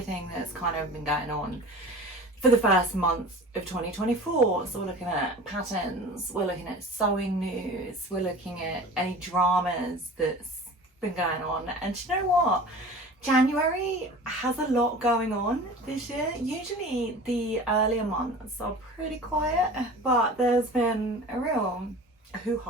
that's kind of been going on for the first month of 2024. So we're looking at patterns, we're looking at sewing news, we're looking at any dramas that's been going on. And you know what? January has a lot going on this year. Usually the earlier months are pretty quiet, but there's been a real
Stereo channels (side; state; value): both; normal; correlation 0.39